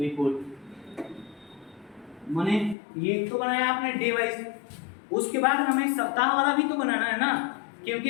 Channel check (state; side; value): drops out; right; at 2.8 s